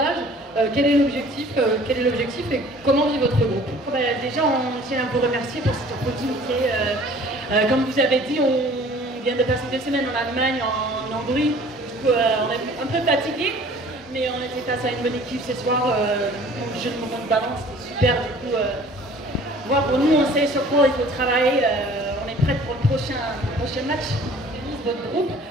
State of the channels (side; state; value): both; normal; correlation 0.50